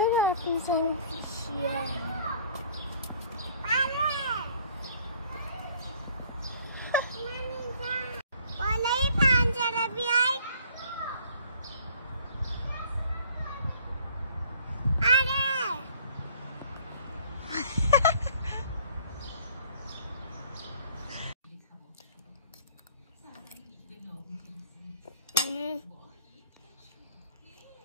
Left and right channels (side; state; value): both; inverted; correlation -0.57